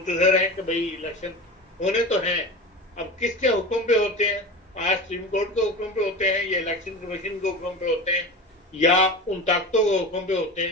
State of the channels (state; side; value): normal; both; correlation 0.29